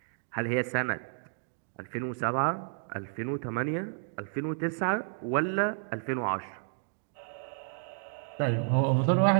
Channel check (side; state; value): left; silent; digital silence